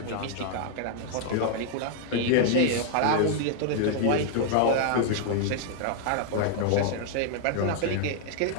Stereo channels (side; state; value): both; different; correlation 0.00